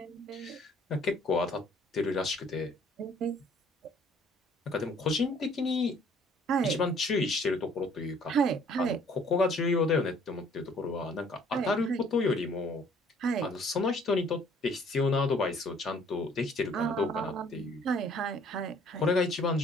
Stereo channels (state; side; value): normal; both; correlation 0.58